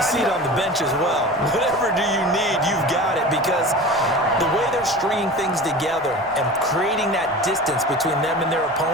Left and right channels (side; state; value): both; normal; correlation 0.34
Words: seat on the bench as well. Whatever do you need, you've got it, because the way they're stringing things together and creating that distance between them and their